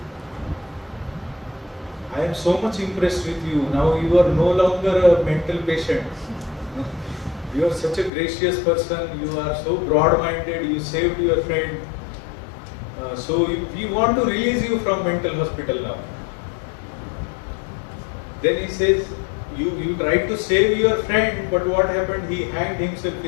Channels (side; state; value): right; drops out; at 8.1 s